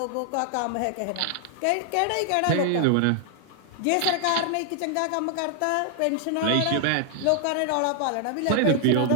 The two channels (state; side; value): different; both; correlation 0.00